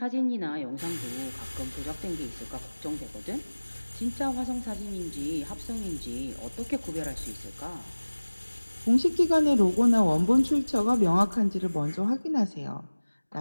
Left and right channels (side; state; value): both; inverted; correlation -1.00